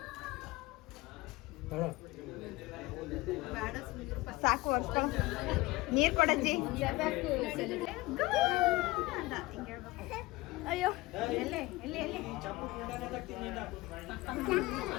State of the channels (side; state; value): right; quieter; 20.8 dB